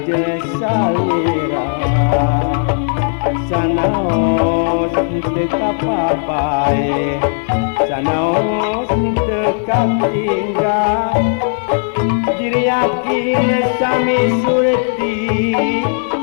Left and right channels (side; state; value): right; silent; digital silence